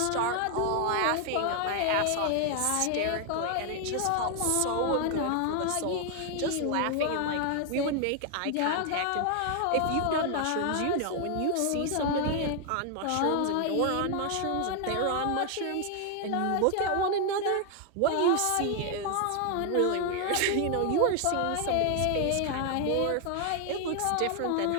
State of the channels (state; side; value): different; both; correlation 0.00